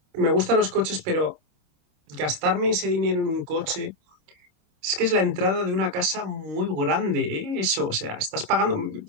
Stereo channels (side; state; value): left; late; 28 ms